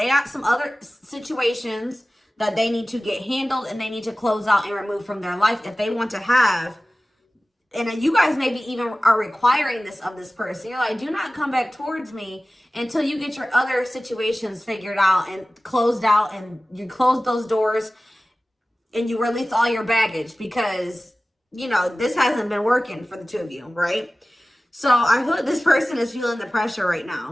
got some other situations that they need to get handled and they need to close out and remove from their life if they want to have... And you guys maybe even are requiring this of this person. You're like, do not come back towards me until you get your other situations figured out and closed out, and you close those doors and you release all your baggage because, you know, this hasn't been working for the two of you, right? So I feel like this person is feeling the pressure right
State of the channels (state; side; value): normal; both; correlation 0.97